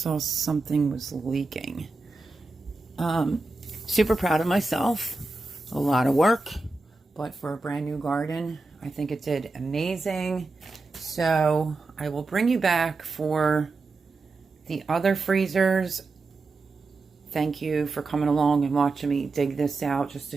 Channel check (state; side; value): quieter; left; 3.5 dB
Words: saw something was leaking. Super proud of myself. A lot of work, but for a brand new garden, I think it did amazing. So I will bring you back for the other freezers. Thank you for coming along and watching me dig this out just